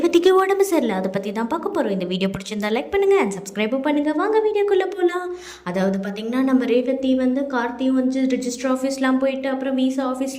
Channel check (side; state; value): both; identical; correlation 1.00